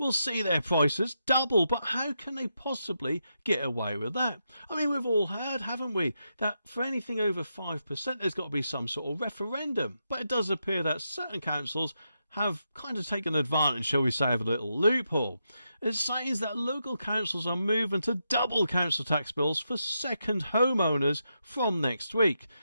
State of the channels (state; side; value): inverted; both; correlation -0.84